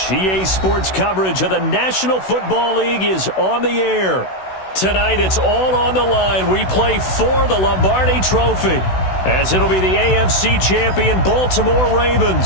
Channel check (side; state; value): right; late; 16 ms